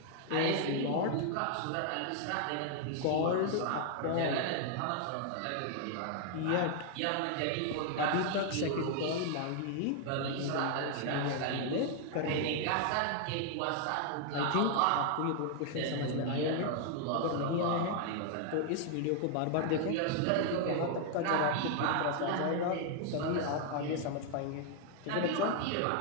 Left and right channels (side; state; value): both; different; correlation 0.00